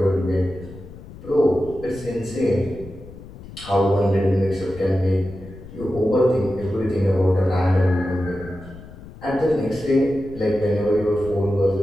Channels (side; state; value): left; noise; rumble, 16 dB below the sound